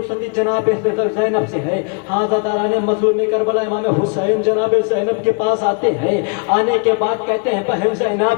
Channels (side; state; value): right; quieter; 38.0 dB